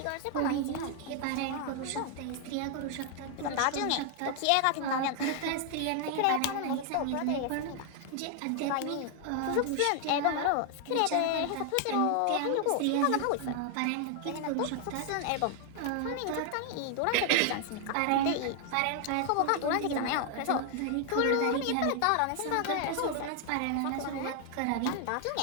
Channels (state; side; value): different; both; correlation 0.00